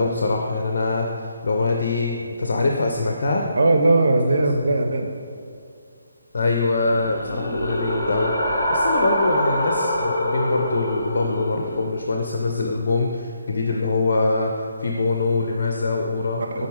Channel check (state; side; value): inverted; both; correlation -0.77